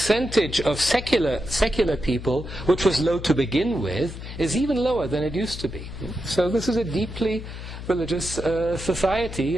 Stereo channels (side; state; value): left; noise; hum, 10 dB below the sound